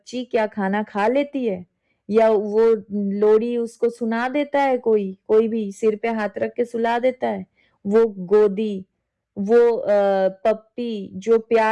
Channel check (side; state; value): both; identical; correlation 1.00